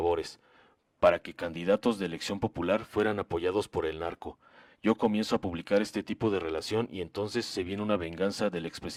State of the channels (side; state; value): both; identical; correlation 1.00